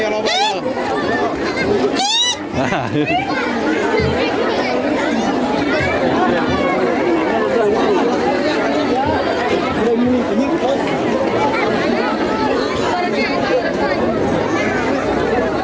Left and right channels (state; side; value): identical; both; correlation 1.00